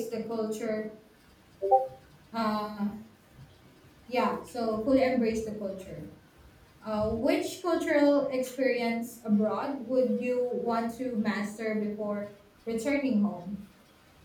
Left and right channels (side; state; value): both; identical; correlation 1.00